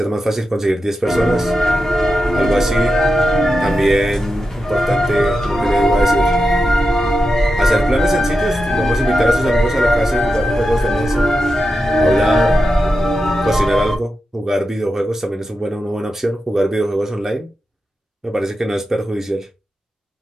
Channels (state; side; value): normal; both; correlation 0.89